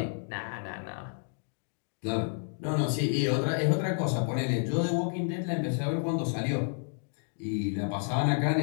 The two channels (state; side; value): silent; right; 58 dB below the other